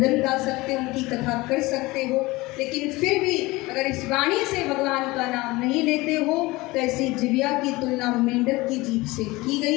गा सकते हो, उनकी कथा कर सकते हो, लेकिन फिर भी अगर इस वाणी से भगवान का नाम नहीं लेते हो तो ऐसी जिह्वा की तुलना मेंढक की जीभ से की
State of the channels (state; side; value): quieter; right; 21.4 dB